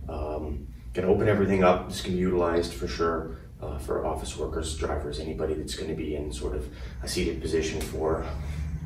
Gonna open everything up. This can be utilized for sure for office workers, drivers, anybody that's going to be in sort of a seated position for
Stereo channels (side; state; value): both; identical; correlation 1.00